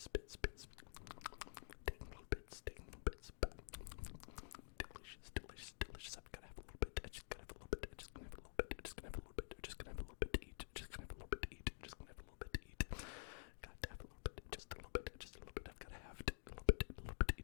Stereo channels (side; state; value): right; silent; digital silence